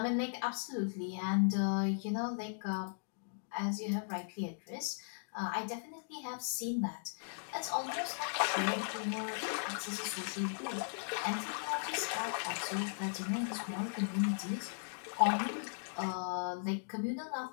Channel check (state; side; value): silent; right; digital silence